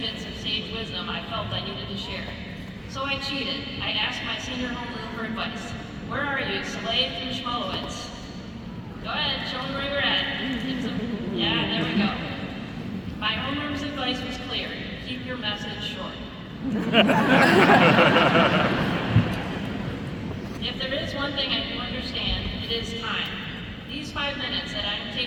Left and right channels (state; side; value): identical; both; correlation 1.00